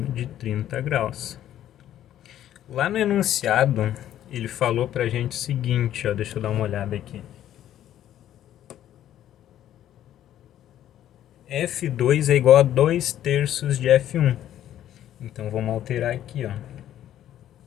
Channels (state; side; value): quieter; right; 11.7 dB